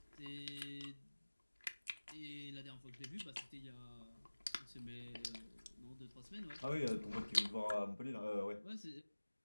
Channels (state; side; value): inverted; both; correlation -1.00